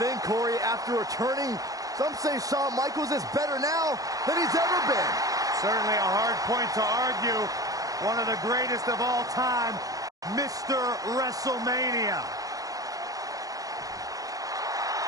thing, Corey. After returning, some say Shawn Michaels is better now than he's ever been. Certainly a hard point to argue. One of the greatest of all time, Mr. WrestleMania.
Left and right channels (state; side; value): late; left; 0.17 ms